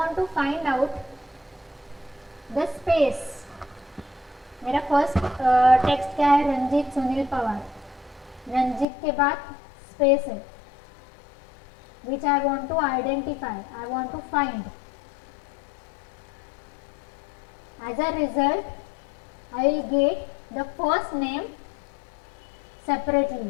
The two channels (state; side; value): drops out; right; at 8.8 s